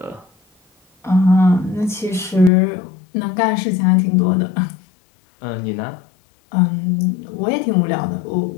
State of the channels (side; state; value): right; drops out; at 2.5 s